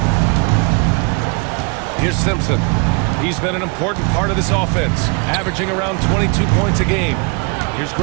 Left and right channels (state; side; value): quieter; left; 31.9 dB